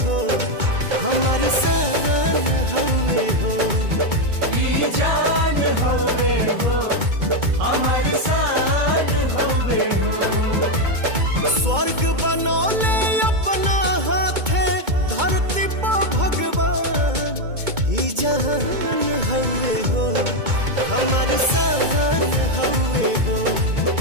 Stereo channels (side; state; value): left; late; 2.2 ms